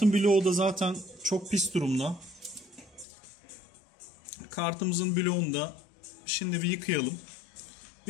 bloğu da zaten çok pis durumda. Kartımızın bloğunu da şimdi bir yıkayalım.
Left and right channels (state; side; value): drops out; right; at 3.1 s